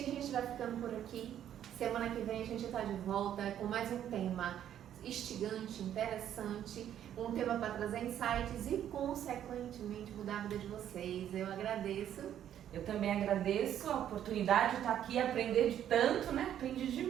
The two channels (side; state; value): left; quieter; 10.5 dB